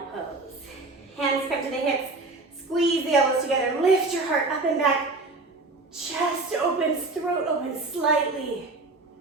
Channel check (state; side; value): quieter; left; 3.3 dB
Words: pose. Hands come to the hips. Squeeze the elbows together. Lift your heart up and back. Chest opens, throat opens slightly.